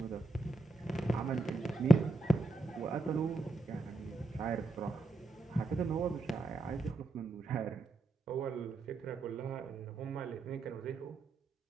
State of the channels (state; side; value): quieter; left; 3.0 dB